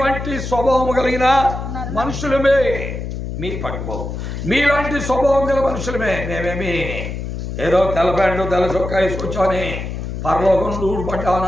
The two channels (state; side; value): noise; left; hum, 6 dB below the sound